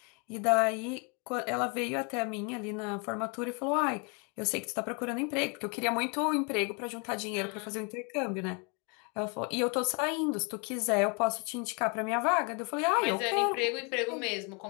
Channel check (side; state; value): right; quieter; 34.0 dB